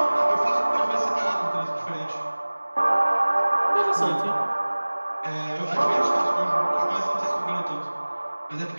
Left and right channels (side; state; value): both; inverted; correlation -1.00